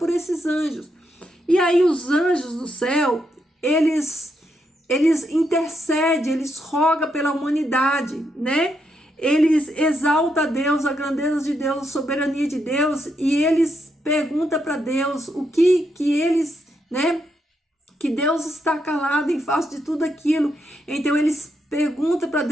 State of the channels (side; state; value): both; normal; correlation 0.80